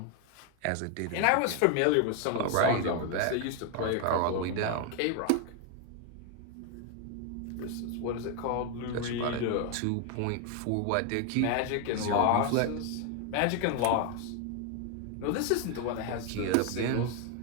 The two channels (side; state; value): both; different; correlation 0.01